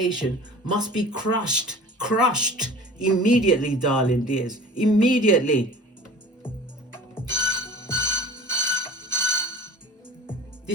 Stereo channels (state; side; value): normal; both; correlation 0.42